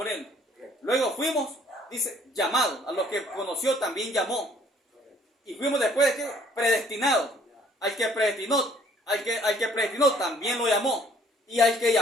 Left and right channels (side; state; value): both; normal; correlation 0.59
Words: Él. Luego fuimos, dice, llamados. A los que conoció también llamó. Y fuimos después de que predestinados. Al que predestinó también lo llamó. Y al que